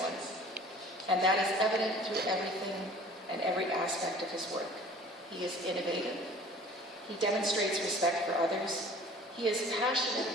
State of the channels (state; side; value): normal; both; correlation 0.48